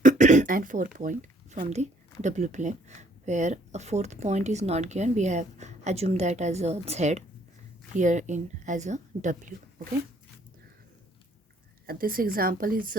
and 4 point from the W plane, where a fourth point is not given. We have assumed that as a Z, here in as a W. Okay, this example is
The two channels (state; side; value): normal; both; correlation 0.62